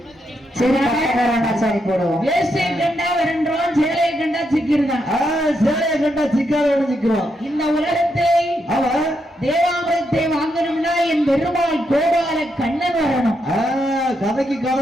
சரி பட்டக்காரனாச்சு அனுப்பி போடுவோம். வேஷ்டியை கண்டா வரன்றோம், சேலையை கண்டா சிக்கிருதான். சேலையை கண்டா சிக்காத சிக்கிறோம். இந்த உலகத்தை தேவாமிரத்தை வாங்கணும்னா என் பெருமாள் கோபால கண்ணன் வரணும். கதைக்கு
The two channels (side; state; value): both; normal; correlation 0.81